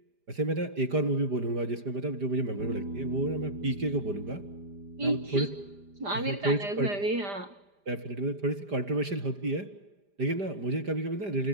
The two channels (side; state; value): left; late; 5.0 ms